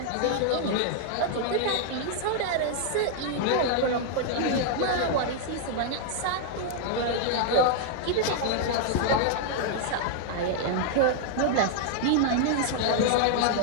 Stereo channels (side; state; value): both; different; correlation -0.01